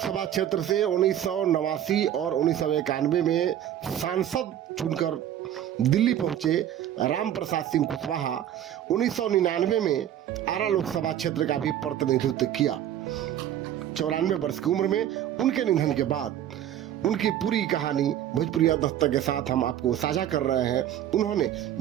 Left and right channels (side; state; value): left; quieter; 11.1 dB